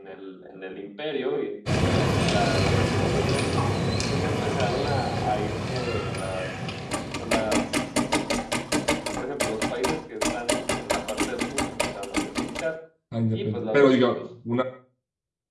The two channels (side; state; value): both; identical; correlation 1.00